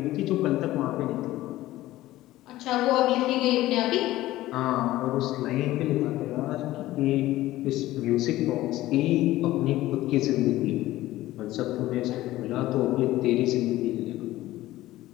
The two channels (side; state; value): right; quieter; 16.1 dB